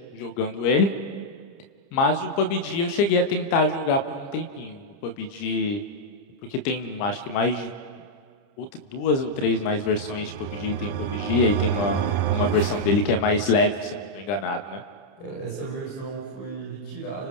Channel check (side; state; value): right; late; 30 ms